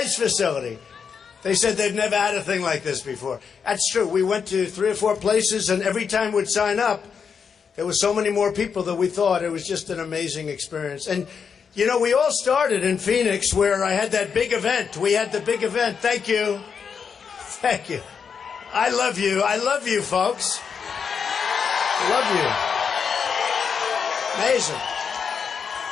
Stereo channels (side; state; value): right; quieter; 6.4 dB